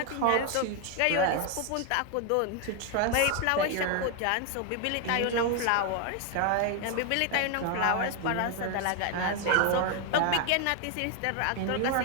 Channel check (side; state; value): both; different; correlation 0.01